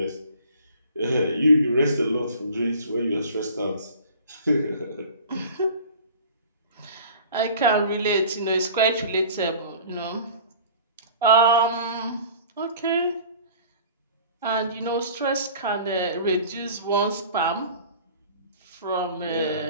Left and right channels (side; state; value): both; inverted; correlation -0.45